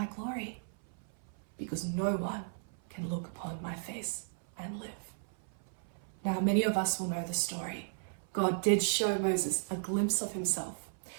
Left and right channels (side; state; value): left; silent; 54 dB below the other